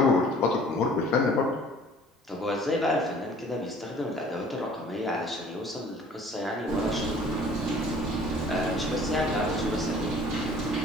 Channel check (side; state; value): both; normal; correlation 0.51